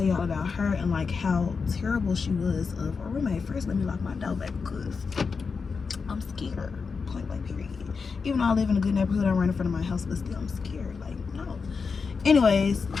y'all about her and like how terrible she was of a roommate. First, let me lock my door back because I'm scared. Point blank period. Even though I live in a good neighborhood, I'm right in front of my house, but still I'm scared. Like, no. Anyways,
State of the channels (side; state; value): right; quieter; 5.1 dB